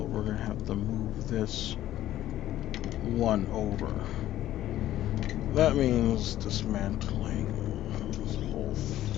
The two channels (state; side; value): quieter; right; 13.4 dB